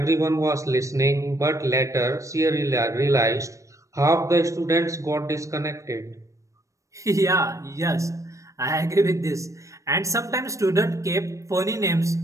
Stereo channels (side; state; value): left; late; 0.15 ms